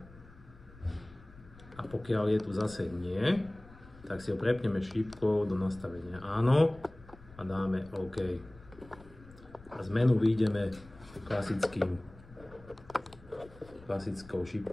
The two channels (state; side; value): noise; left; rumble, 21 dB below the sound